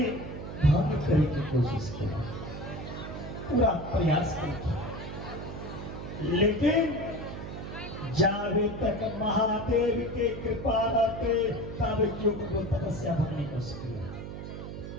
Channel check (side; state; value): right; noise; hum, 8 dB below the sound